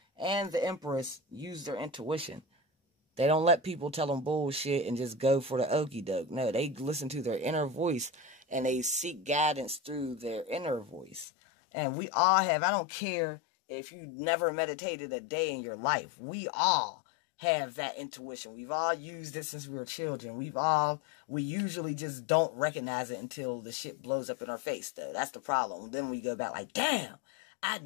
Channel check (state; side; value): drops out; right; at 11.2 s